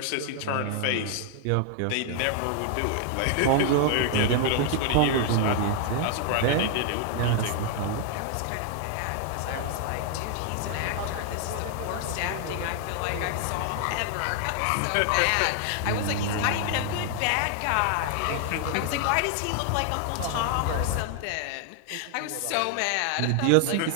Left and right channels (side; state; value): both; different; correlation 0.00